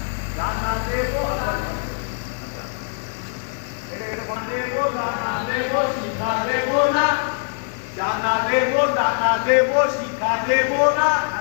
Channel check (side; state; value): right; silent; digital silence